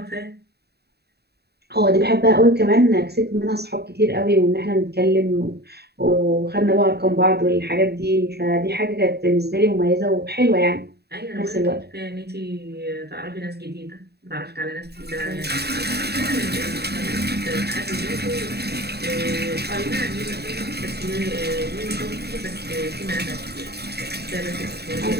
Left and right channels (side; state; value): left; late; 0.47 ms